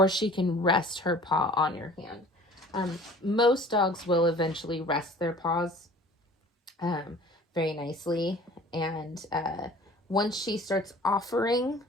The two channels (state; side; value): normal; both; correlation 0.47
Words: she can rest her paw on your hand. Most dogs will eventually rest their paws very nicely. And once she starts offering